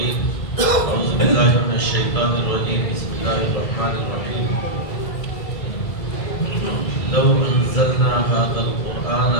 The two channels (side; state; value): right; late; 1.6 ms